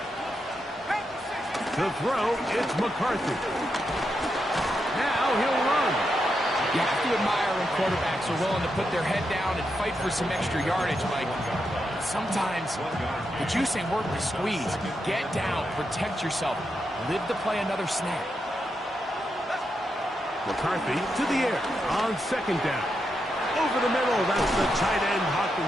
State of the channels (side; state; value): both; normal; correlation 0.84